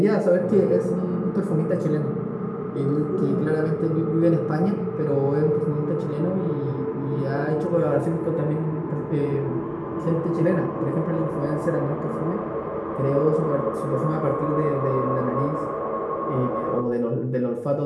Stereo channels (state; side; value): identical; both; correlation 1.00